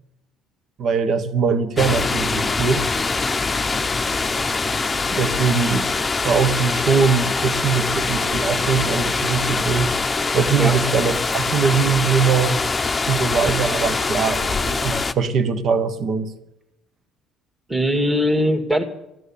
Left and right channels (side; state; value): both; normal; correlation 0.67